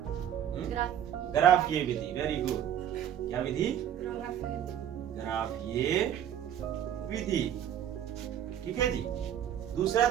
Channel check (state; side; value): quieter; left; 10.1 dB